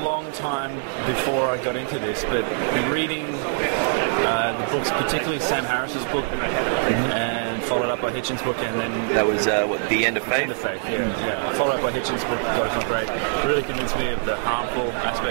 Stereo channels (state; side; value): silent; left; digital silence